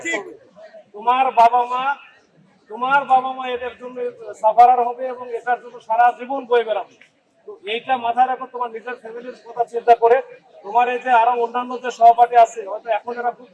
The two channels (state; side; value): identical; both; correlation 1.00